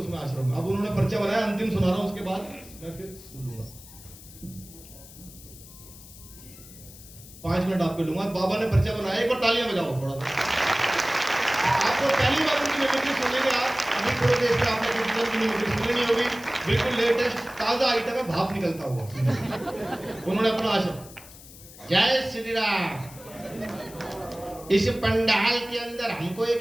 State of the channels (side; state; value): left; noise; hiss, 19 dB below the sound